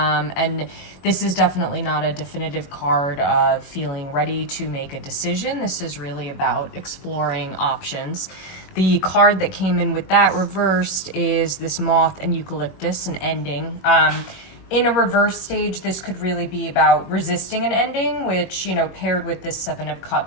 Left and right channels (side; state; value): right; late; 21 ms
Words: this is definitely not a definitive card of feeling ready to make a decision. This is really about exploring options. The card that came in with that reversed is this Moth and Eucalyptus, an ending. In a reverse stage, this could really be about resisting an ending, which, paired with this Seven of